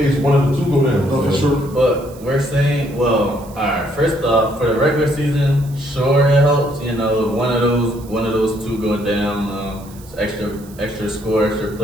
one of the two go down. For sure. But we're saying, well, all right. First off, for the regular season, sure it helps. You know, one of those two go down. Extra score, extra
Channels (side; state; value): right; noise; hiss, 23 dB below the sound